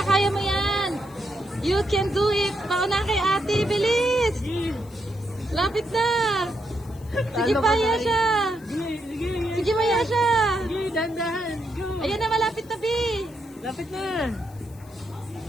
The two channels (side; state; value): left; noise; hiss, 26 dB below the sound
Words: kaya mo yan. You can do it. Pauna kay ate, bilis. Lapit na. Sige pa, Yesha. Sige! Sige! Sige pa, Yesha. Sige! Dahan-dahan! Go! Ayan na, malapit na, Bi. Lapit na!